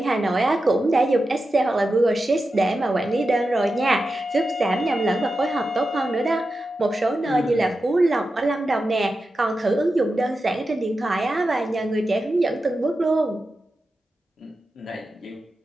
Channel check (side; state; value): both; normal; correlation 0.91